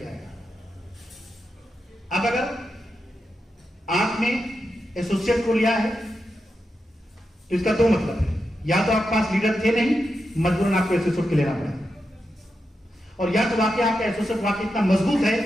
आएगा। अब अगर आपने एसोसिएट को लिया है तो इसका 2 मतलब है, या तो आपके पास लीडर थे नहीं, मजबूरन आपको एसोसिएट के लेना पड़ा, और या तो वाकई आपका एसोसिएट वाकई इतना मजबूत है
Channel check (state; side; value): normal; both; correlation 0.88